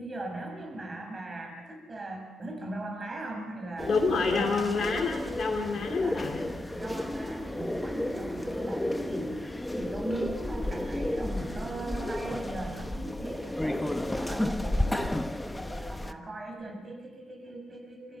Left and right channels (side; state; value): both; normal; correlation 0.89